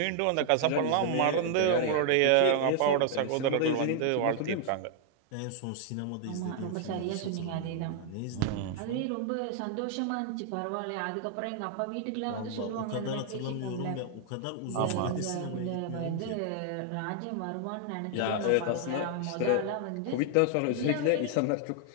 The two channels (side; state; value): both; different; correlation 0.00